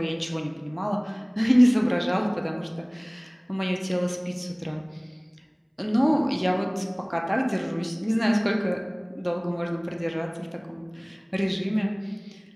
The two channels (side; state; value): both; identical; correlation 1.00